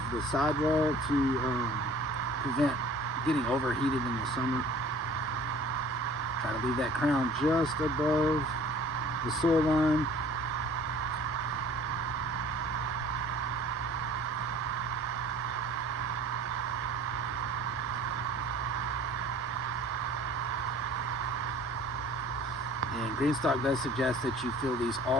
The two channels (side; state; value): both; normal; correlation 0.49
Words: the sidewall to prevent getting overheated in the summer. Try to leave that crown just above the soil line. And Greenstalk does suggest that you fill these